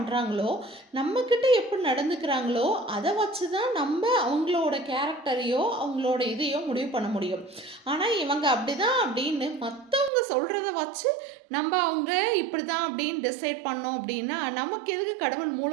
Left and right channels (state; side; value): drops out; left; at 10.1 s